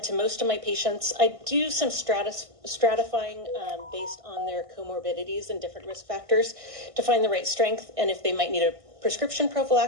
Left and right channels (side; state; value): left; late; 1.6 ms